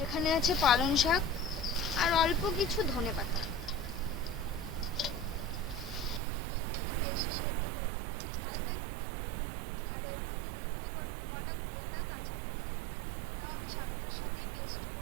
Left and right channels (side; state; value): left; drops out; at 6.2 s